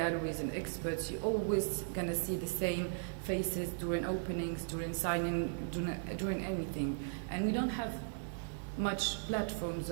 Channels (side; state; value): left; silent; 53 dB below the other